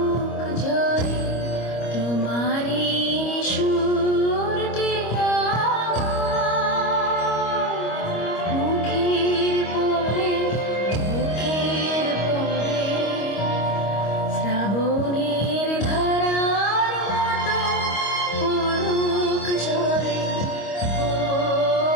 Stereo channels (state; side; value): late; right; 25 ms